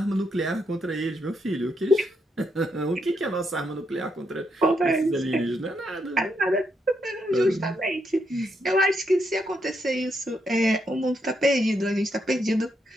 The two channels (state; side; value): normal; both; correlation 0.79